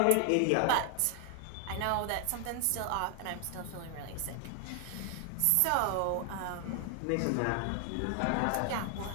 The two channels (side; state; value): both; different; correlation 0.00